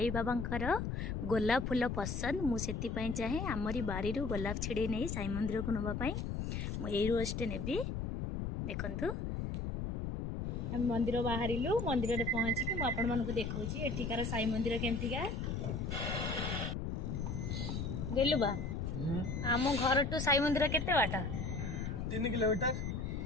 बाबांकर गोलाप फूल पसंद, मु सेति पई चाहे आमरी बारी रो गोलाप छिड़े नै साई मंदिर को नबा पई मु एई रोजटे नेबी। देखंतु हम मंदिर बाहरिलु, मंदिर रे पहुंची कि मु आपण मानकु देखौची एठिकार साई मंदिर केमतिका गेलु बा। आम घर टू साई मंदिर केते बाटा? 3 किलोमीटर।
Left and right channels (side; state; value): left; noise; rumble, 3 dB below the sound